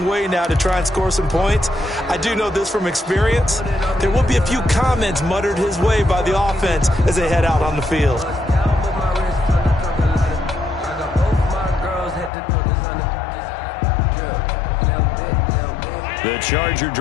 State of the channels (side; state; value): right; drops out; at 12.3 s